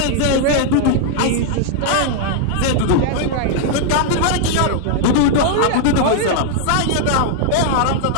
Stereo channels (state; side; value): different; both; correlation 0.00